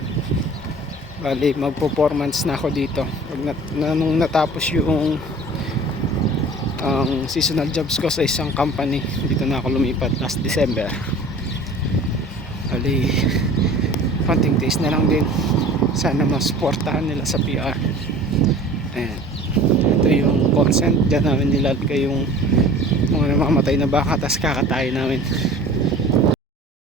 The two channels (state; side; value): normal; both; correlation 0.44